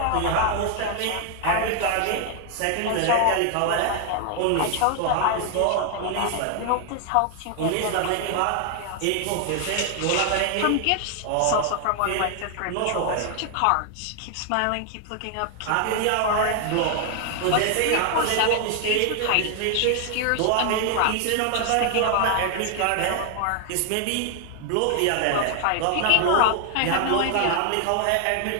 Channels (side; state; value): both; different; correlation 0.00